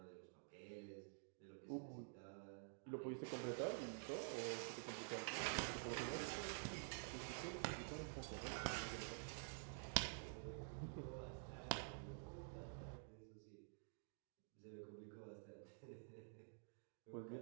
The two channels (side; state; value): left; silent; digital silence